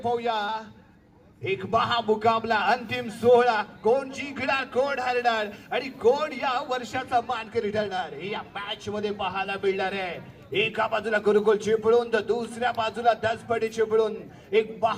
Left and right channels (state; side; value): identical; both; correlation 1.00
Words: एक महामुकाबला, अंतिम सोहळा, कोण जिंकणार, कोण हरणार आणि कोण या वर्षाचा मानकरी ठरणार हे या मॅच मध्ये पाहायला मिळणार आहे. एका बाजूला गुरुकुल चिपळूण तर दुसऱ्या बाजूला दसपडी चिपळूण. एक